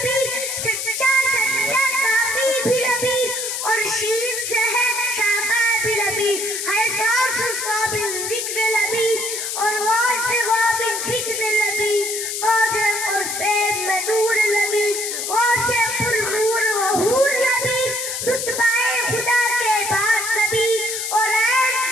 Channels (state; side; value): noise; left; hiss, 3 dB below the sound